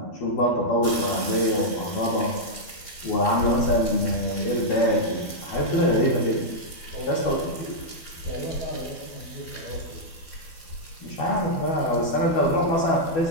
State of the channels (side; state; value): right; late; 12 ms